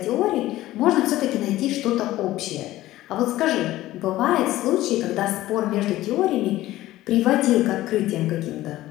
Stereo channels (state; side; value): quieter; right; 15.8 dB